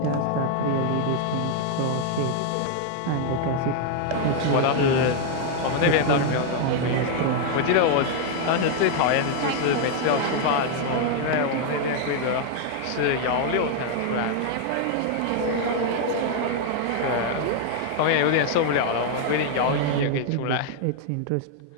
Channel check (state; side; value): different; both; correlation 0.00